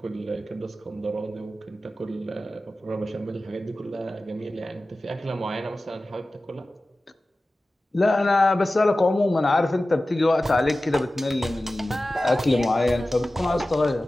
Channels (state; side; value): normal; both; correlation 0.96